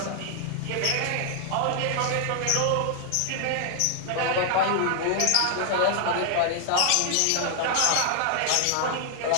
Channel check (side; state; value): both; different; correlation 0.00